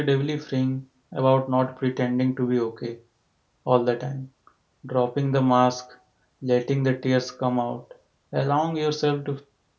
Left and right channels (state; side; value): identical; both; correlation 1.00